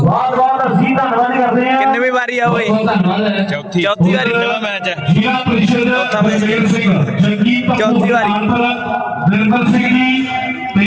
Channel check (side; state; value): both; identical; correlation 1.00